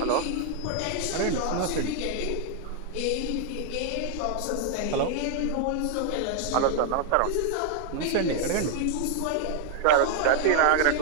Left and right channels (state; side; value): different; both; correlation 0.00